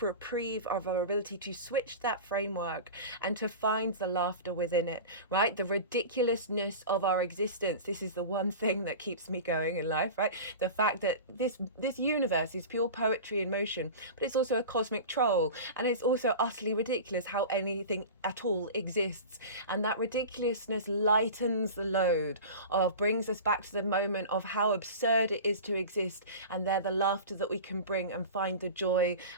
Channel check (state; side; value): inverted; both; correlation -0.32